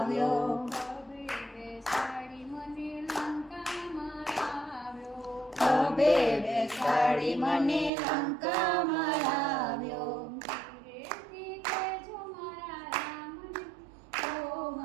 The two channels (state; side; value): drops out; left; at 7.9 s